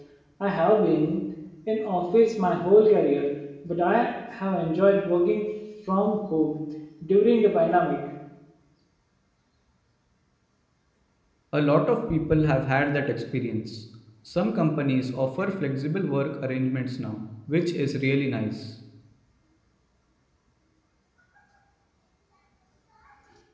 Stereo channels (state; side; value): identical; both; correlation 1.00